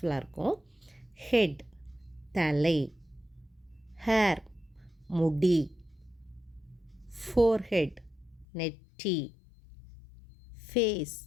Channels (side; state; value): right; drops out; at 8.5 s